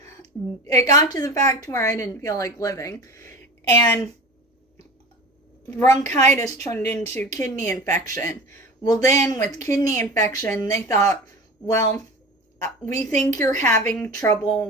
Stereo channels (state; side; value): normal; both; correlation 0.34